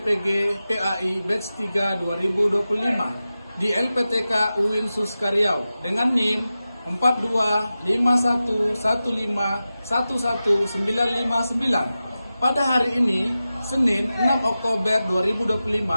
PAI Batch 3 2025 di LPTK UIN Suskariau dengan NIM 4251511959. Pada hari ini, Senin 6 Oktober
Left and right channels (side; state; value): both; inverted; correlation -0.94